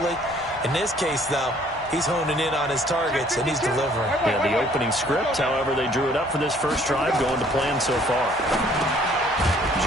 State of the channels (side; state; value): both; normal; correlation 0.59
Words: In this case, though, he's honing in on his targets, and he's delivering. Yeah, the opening script, however, they drew it up for this first drive, going to plan so far.